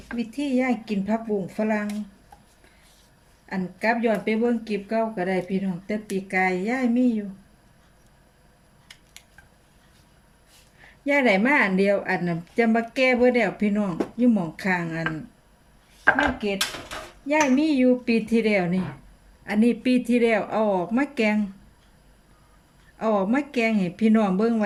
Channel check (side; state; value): both; identical; correlation 1.00